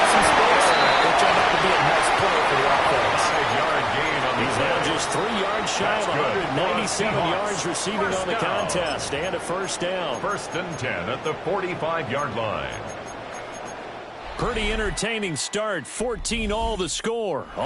some space. It turned out to be a nice play for the offense. 5-yard gain on the He's now just 3 yards shy of 197 yards receiving on the contest. And a first down. 1st and 10 at the 45-yard line. Pretty entertaining start. 14-all the score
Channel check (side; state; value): both; identical; correlation 1.00